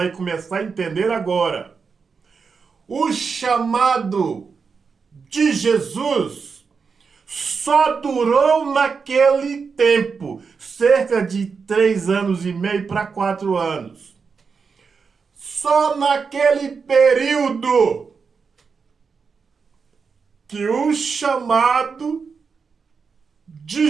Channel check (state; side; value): quieter; left; 5.4 dB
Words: começar a entender agora. O chamado de Jesus só durou naquele tempo, cerca de 3 anos e meio para 4 anos. Só naquele período que o chamado de